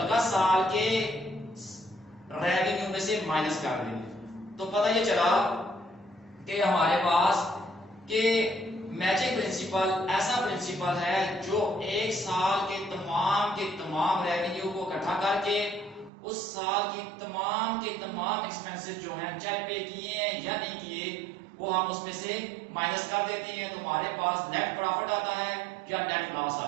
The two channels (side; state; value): left; drops out; at 16.1 s